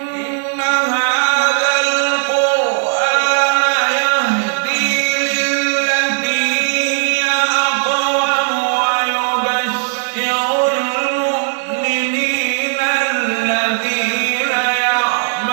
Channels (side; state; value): left; silent; 55 dB below the other